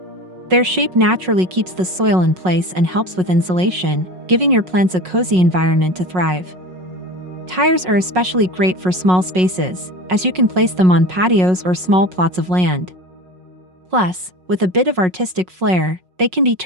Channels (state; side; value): late; left; 5.5 ms